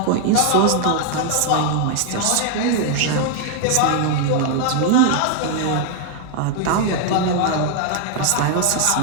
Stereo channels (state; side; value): different; both; correlation 0.00